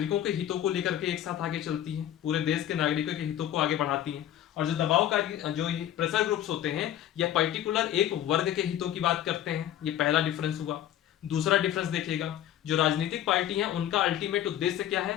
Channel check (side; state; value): right; quieter; 11.6 dB